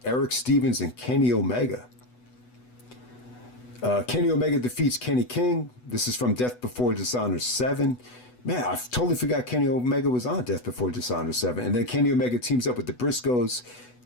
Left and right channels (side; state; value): right; late; 8.1 ms